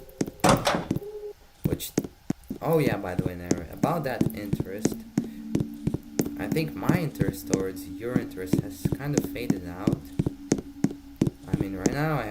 Which, oh yeah, by the way, interest has kind of faded out. I mean, right now I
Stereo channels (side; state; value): both; identical; correlation 1.00